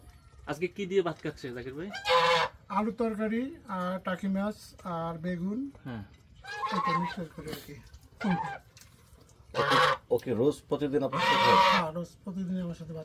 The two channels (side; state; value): both; identical; correlation 1.00